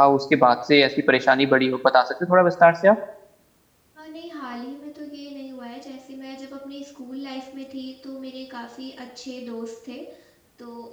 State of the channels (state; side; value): identical; both; correlation 1.00